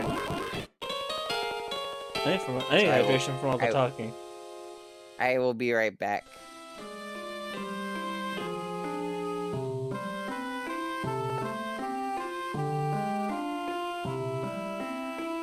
I need hydration from all the talking. I will be right back.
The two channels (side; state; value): both; identical; correlation 1.00